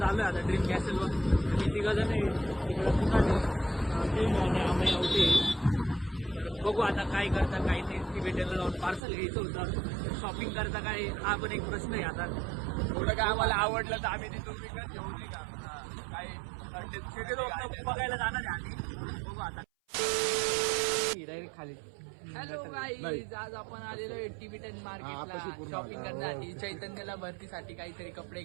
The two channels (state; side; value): drops out; left; at 9.0 s